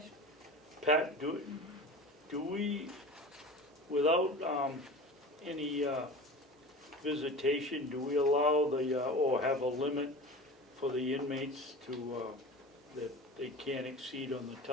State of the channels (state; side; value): normal; both; correlation 0.35